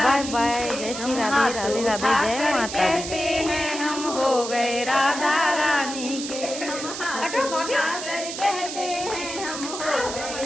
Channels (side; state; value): right; noise; hiss, 7 dB below the sound